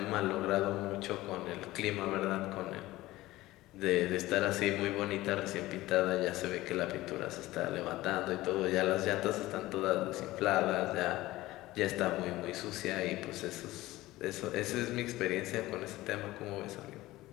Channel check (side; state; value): right; quieter; 17.6 dB